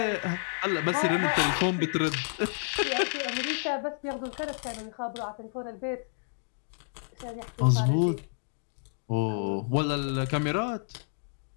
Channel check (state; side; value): silent; right; digital silence